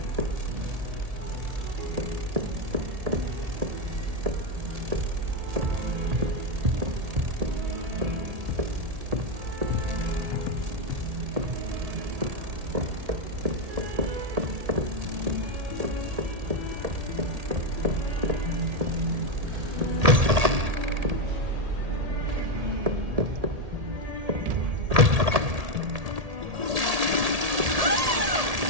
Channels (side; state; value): left; late; 1.8 ms